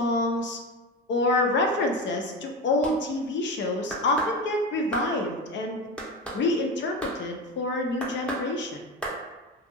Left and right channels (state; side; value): normal; both; correlation 0.22